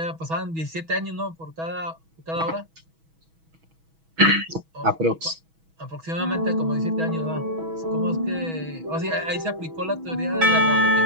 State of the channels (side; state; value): left; late; 6.2 ms